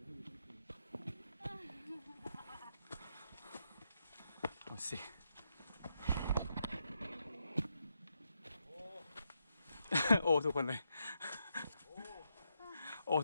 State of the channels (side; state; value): both; inverted; correlation -0.81